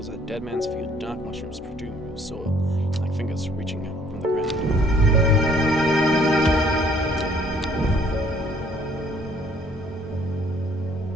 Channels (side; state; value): both; normal; correlation 0.60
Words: as Dead Man's Field. Dark mushrooms protrude from soil, like fingers reaching out from the ground.